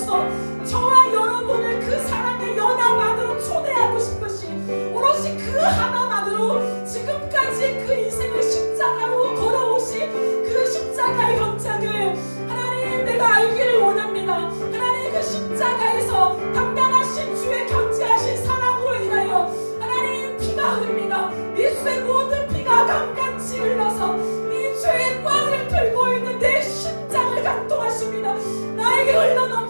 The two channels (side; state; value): both; inverted; correlation -1.00